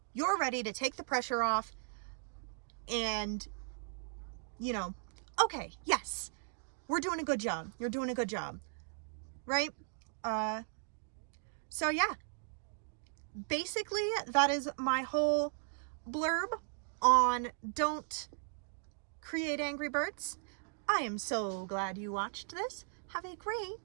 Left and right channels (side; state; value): left; silent; digital silence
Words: you're ready to take the pressure off and, okay, yes, we're doing a good job. You're doing a good job, right? So yeah, basically that is my whole blurb on don't create angry birds. I am so glad you watched this. Have a